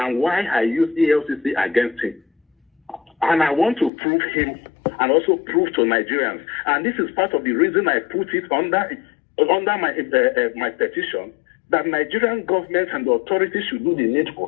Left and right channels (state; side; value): drops out; right; at 3.9 s